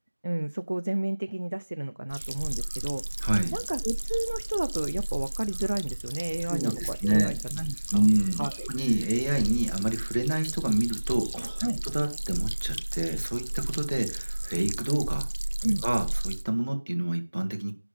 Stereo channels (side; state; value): both; inverted; correlation -1.00